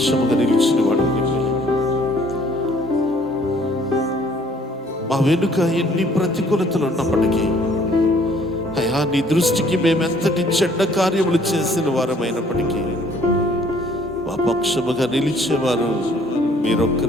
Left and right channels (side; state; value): both; normal; correlation 0.59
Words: నిలిచిన వాడు నీవే. మా వెనుక ఎన్ని ప్రతికూలతలు ఉన్నప్పటికీ అయ్యా నీ దృష్టికి మేమెంతటి చెడ్డ కార్యములు చేసిన వారమైనప్పటికీ మా పక్షముగా నిలిచేవారు